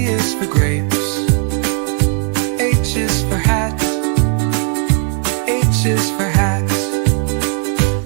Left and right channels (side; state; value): left; quieter; 39.3 dB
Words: is for grapes. H is for hat. H is for hat.